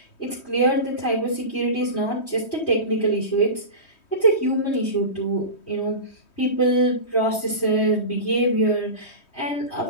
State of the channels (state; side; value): late; right; 3.2 ms